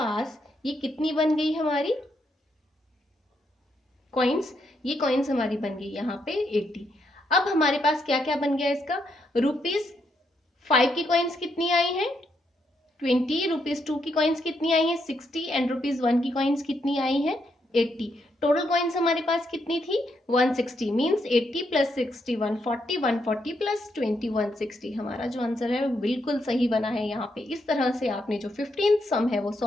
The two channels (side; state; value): both; normal; correlation 0.78